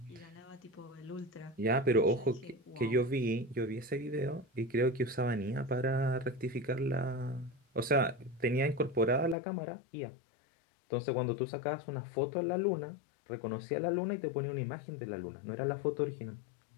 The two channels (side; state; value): right; drops out; at 9.3 s